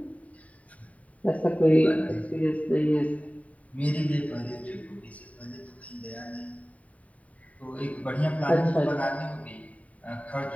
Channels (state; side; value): late; right; 0.068 ms